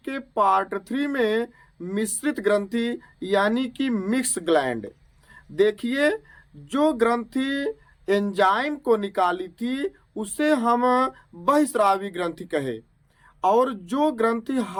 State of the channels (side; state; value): both; identical; correlation 1.00